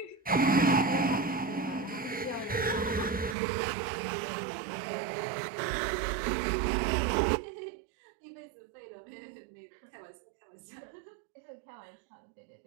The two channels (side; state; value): left; drops out; at 3.4 s